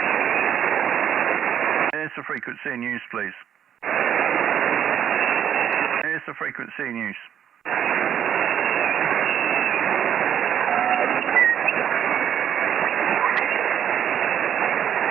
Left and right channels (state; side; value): quieter; left; 9.4 dB